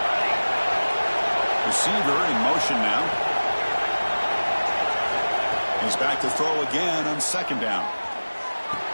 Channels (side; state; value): both; inverted; correlation -1.00